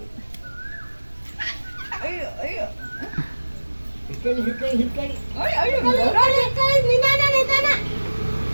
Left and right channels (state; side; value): inverted; both; correlation -1.00